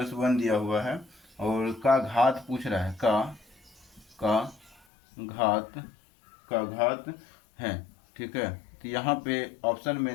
1 दिया हुआ है, और का घात पूछ रहा है, का घात का घात है, ठीक है। तो यहाँ पे ऑप्शन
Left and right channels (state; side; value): drops out; right; at 4.8 s